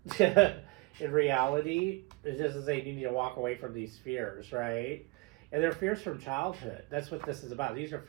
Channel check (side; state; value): left; quieter; 25.0 dB